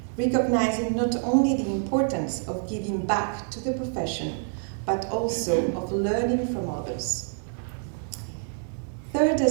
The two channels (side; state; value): left; silent; 60 dB below the other